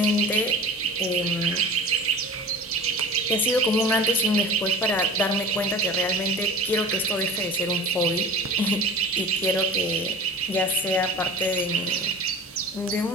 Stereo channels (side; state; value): both; normal; correlation 0.38